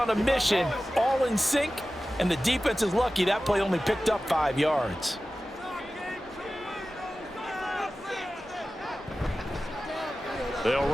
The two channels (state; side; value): normal; both; correlation 0.95